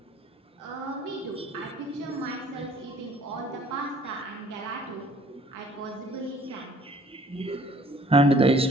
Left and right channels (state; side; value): normal; both; correlation 0.55